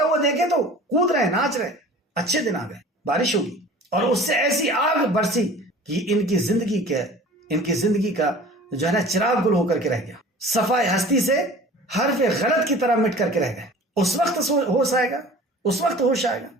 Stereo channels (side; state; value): both; normal; correlation 0.43